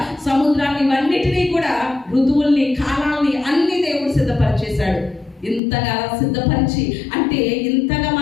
సముద్రాన్ని, ఇవన్నిటినీ కూడా, ఋతువుల్ని, కాలాల్ని అన్ని దేవుడు సిద్ధపరిచేశాడు. ఇంతగా సిద్ధపరిచి, అంటే ఇంతగా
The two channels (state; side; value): drops out; right; at 5.6 s